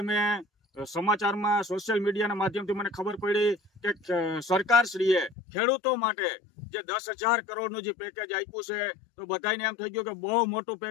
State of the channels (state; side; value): drops out; right; at 5.4 s